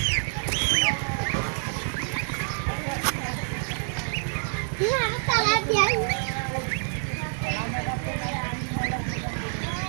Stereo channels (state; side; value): silent; left; digital silence